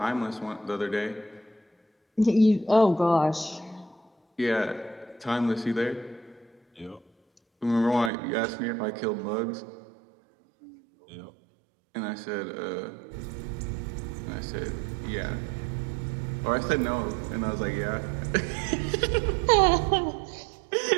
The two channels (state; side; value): drops out; left; at 8.1 s